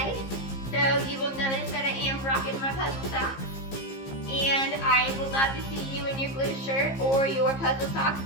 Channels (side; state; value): right; late; 15 ms